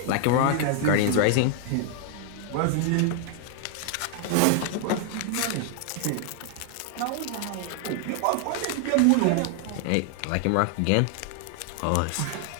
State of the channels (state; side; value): different; both; correlation 0.00